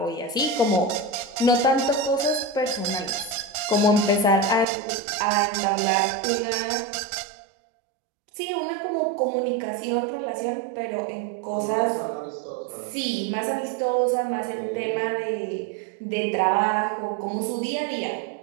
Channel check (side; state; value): left; drops out; at 4.7 s